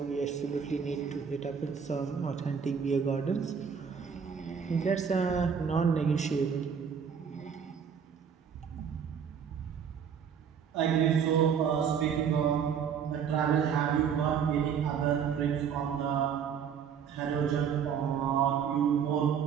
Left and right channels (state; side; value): quieter; left; 7.2 dB